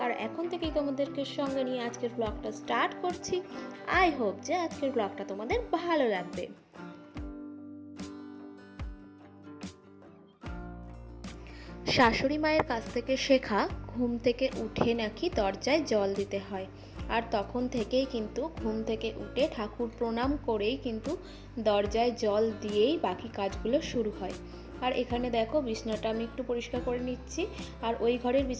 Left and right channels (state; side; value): identical; both; correlation 1.00